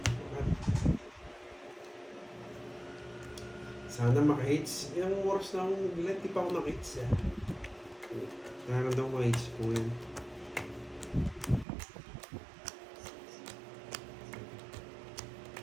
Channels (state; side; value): drops out; left; at 11.7 s